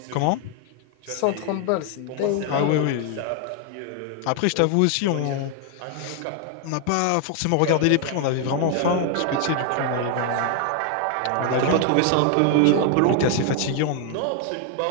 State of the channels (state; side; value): different; both; correlation 0.00